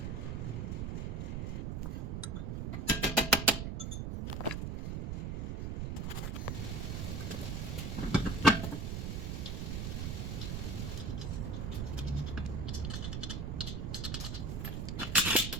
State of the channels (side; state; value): right; noise; rumble, 2 dB below the sound